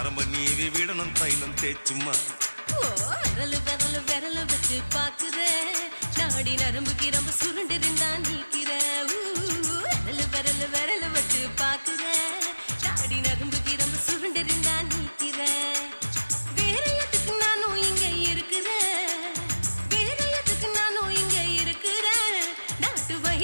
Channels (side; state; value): both; inverted; correlation -1.00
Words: நீவி விடணும் தைலம் தேச்சுமா ஓ விரலு விரலு விரலு வச்சு பாக்குறேன் நாடி நரம்பு கிரம்பு சுருண்டிருந்தா நீக்கிறேன் விரலு விரலு விரலு வச்சு பாக்குறேன் நாடி நரம்பு கிரம்பு சுருண்டிருந்தா நீக்கிறேன் வேற எதுக்கு நானும் இங்க இருக்கிறேன் வேற எதுக்கு நானும் இங்க இருக்கிறேன் நாட்டு